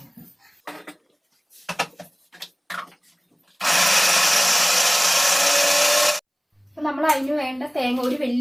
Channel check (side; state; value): both; identical; correlation 1.00